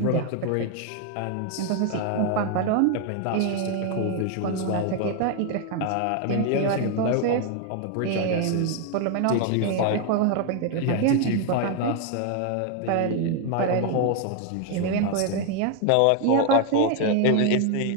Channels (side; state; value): both; different; correlation 0.01